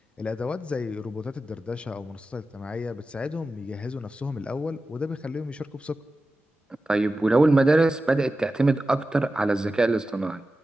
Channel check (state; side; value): normal; both; correlation 0.93